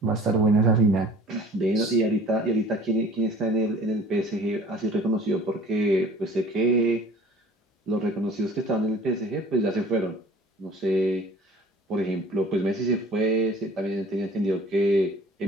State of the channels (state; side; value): normal; both; correlation 0.48